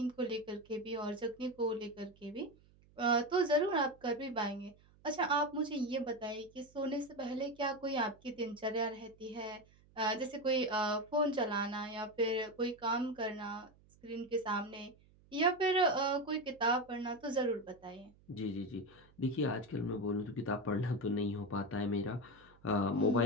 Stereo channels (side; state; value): right; noise; hum, 28 dB below the sound